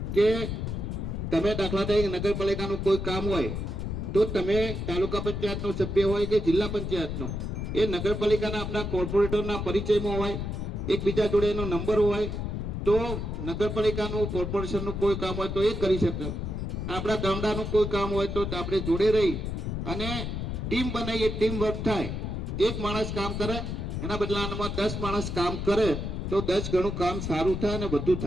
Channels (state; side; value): noise; left; rumble, 4 dB below the sound